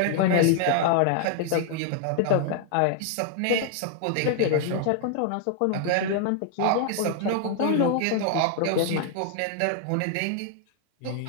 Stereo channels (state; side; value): different; both; correlation 0.00